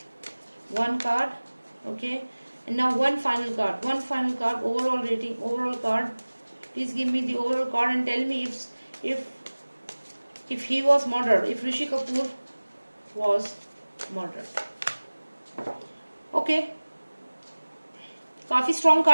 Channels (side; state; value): both; inverted; correlation -1.00